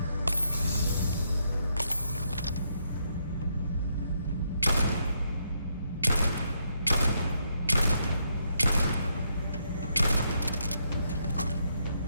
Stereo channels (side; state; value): both; inverted; correlation -0.77